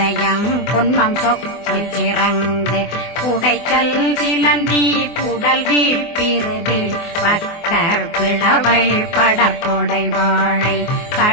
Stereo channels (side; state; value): right; late; 24 ms